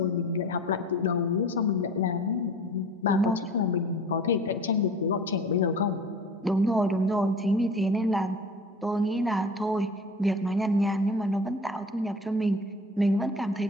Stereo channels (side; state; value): both; normal; correlation 0.40